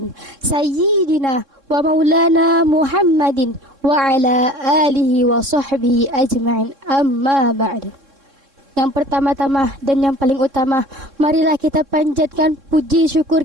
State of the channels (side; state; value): left; late; 3.7 ms